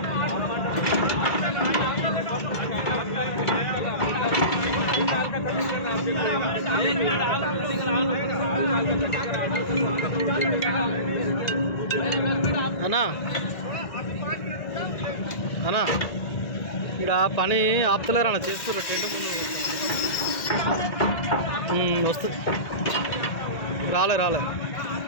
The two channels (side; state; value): right; late; 1.9 ms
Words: అన్నా అన్నా ఇక్కడ పని ఆపుతలేరు అన్న, చేస్తారు టెంట్ ముందు వస్తుంది. రాలే